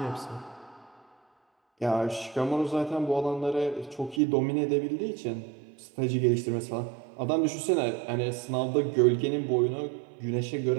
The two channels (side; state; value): left; drops out; at 4.2 s